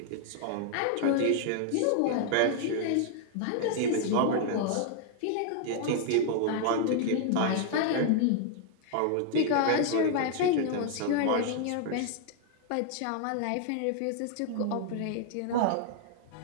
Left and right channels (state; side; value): different; both; correlation 0.00